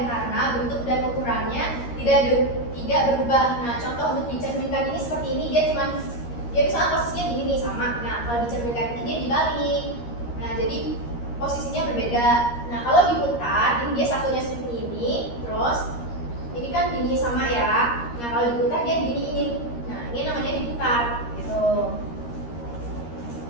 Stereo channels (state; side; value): late; right; 13 ms